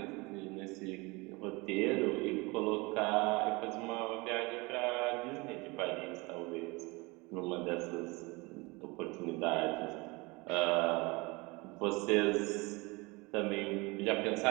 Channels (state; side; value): quieter; left; 25.4 dB